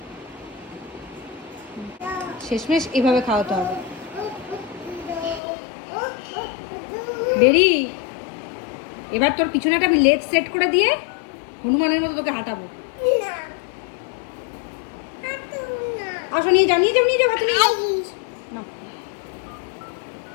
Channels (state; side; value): drops out; right; at 5.4 s